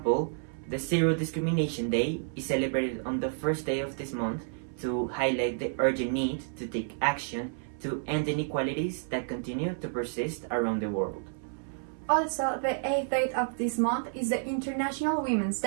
the Zero Discrimination Day is celebrated on the first day of this month to highlight the urgent need to take action to end inequalities that continue to persist around the world. Also, the 8th date of this month is the International Women's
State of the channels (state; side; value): silent; left; 58 dB below the other